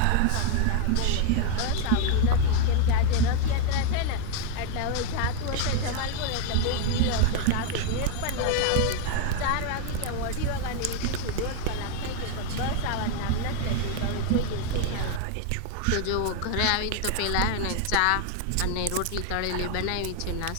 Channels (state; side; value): different; both; correlation 0.00